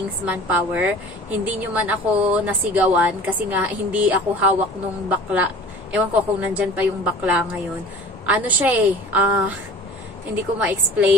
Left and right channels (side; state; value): both; normal; correlation 0.42